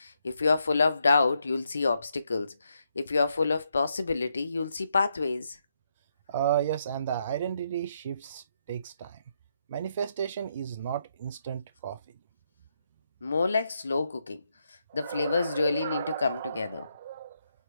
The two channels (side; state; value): both; inverted; correlation -0.79